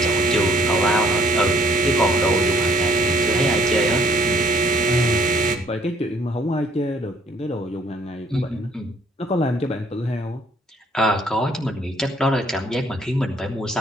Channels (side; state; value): both; normal; correlation 0.62